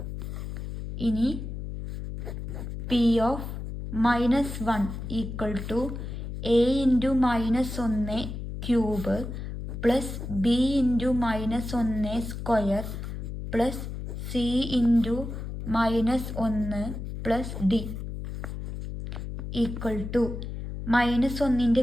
ഇനി P of -1 equal to A into -1 cube plus B into -1 square plus C into -1 plus D equal to -1ൻ്റെ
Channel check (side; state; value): left; noise; hum, 7 dB below the sound